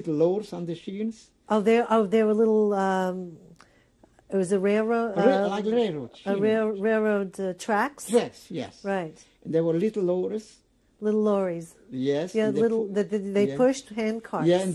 lowers on the sheens. Oh, there were little. It was a railroad. Like railroad. Railroad tracks. Tracks, yes. Right. And there were little lowers. Little lorries. Yes. Yeah, they pushed hand carts. Yeah, and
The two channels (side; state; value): both; identical; correlation 1.00